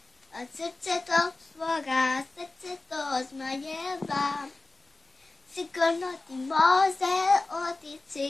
od srce tog svoga srce to zmajeva. Sigurno ti može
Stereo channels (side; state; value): right; quieter; 3.2 dB